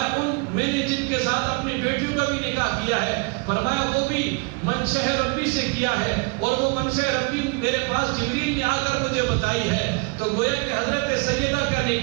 میں نے جن کے ساتھ اپنی بیٹیوں کا بھی نکاح کیا ہے، فرمایا وہ بھی منشأ ربی سے کیا ہے، اور وہ منشأ ربی میرے پاس جبریل نے آ کر مجھے بتائی ہے۔ تو گویا کہ حضرت سیدہ کا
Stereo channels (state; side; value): quieter; left; 32.7 dB